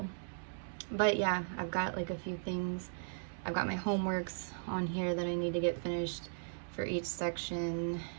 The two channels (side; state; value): left; silent; digital silence